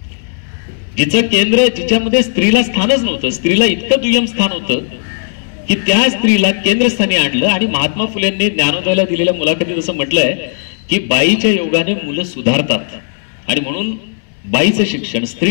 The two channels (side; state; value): right; silent; digital silence